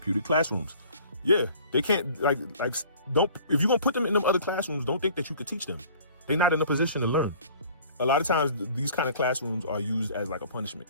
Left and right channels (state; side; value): inverted; both; correlation -0.50